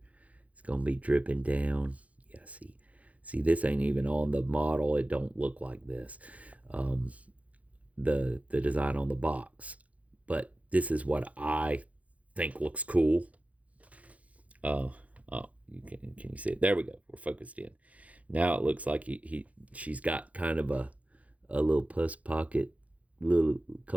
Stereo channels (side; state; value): left; late; 0.067 ms